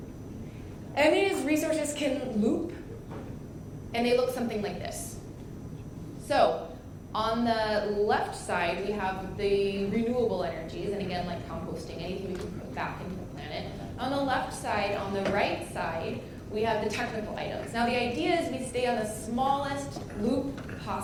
And these resources can loop, and they look something like this. So, on the left side, we have the renewable energies, and again, like composting, anything we can put back into the planet. On the left side, on the right side, we have the technical items. Now, the idea is we stay on the smallest loop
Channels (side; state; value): both; identical; correlation 1.00